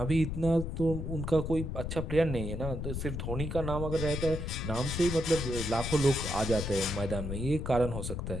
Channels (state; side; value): noise; left; rumble, 4 dB below the sound